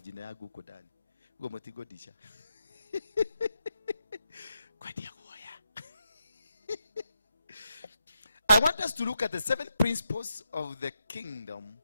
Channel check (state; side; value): inverted; both; correlation -0.84